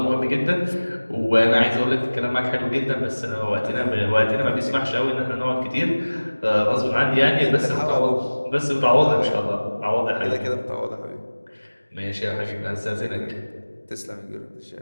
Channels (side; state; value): both; inverted; correlation -1.00